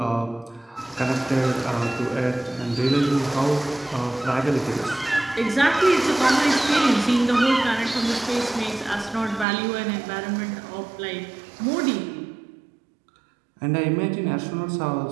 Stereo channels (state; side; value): drops out; left; at 9.5 s